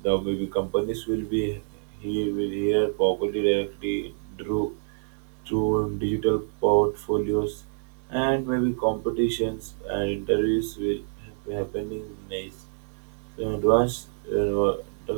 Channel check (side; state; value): left; silent; digital silence